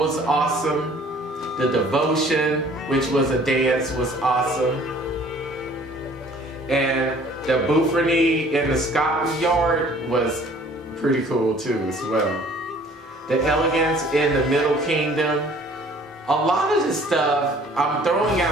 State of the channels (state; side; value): normal; both; correlation 0.54